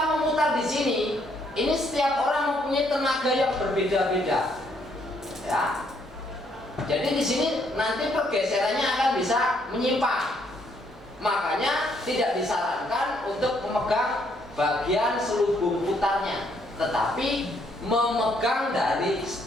memutar di sini, ini setiap orang mempunyai tenaga yang berbeda-beda. Ya. Jadi di sini nanti pergeserannya akan bisa menyimpang. Makanya tidak disarankan untuk memegang bagian selubung putarnya, tetapi memegang dari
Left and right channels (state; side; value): normal; both; correlation 0.70